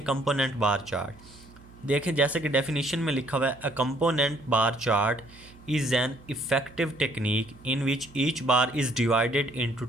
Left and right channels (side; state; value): right; noise; hum, 23 dB below the sound